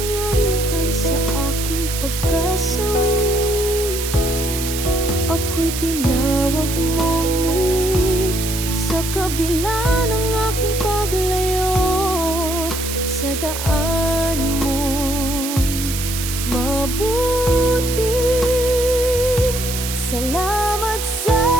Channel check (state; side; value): noise; right; hiss, 5 dB below the sound